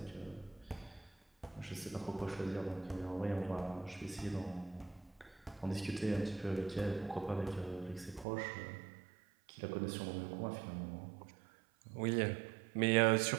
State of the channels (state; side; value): drops out; left; at 8.2 s